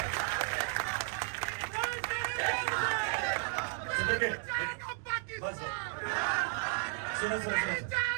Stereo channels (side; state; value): left; silent; 55 dB below the other